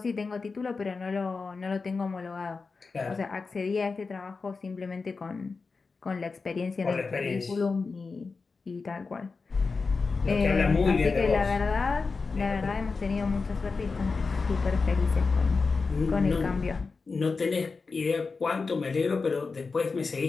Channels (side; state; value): right; quieter; 4.4 dB